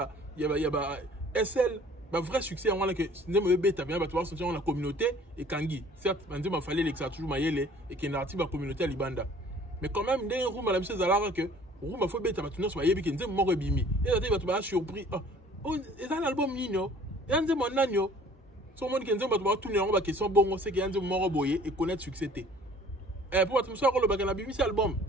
il y a SL, le vrai succès, on a la communauté et Kangi. Certes, il fallait que ça toujours maillé et qu'il y ait une communauté à Libanda. Mais quand même, il y a un room à la mise à que room a fait bête à tourner sur Mayebi qui est mort bimi. Et là, il va surpris. Oh, c'est un album nino. Il y a un mon agneau. Son monde qui est va tourner en bas question bon, c'est qu'il y a un mort boyé et connaître succès. Et pour être sûr, le bagage bimi c'est album.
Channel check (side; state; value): both; normal; correlation 0.52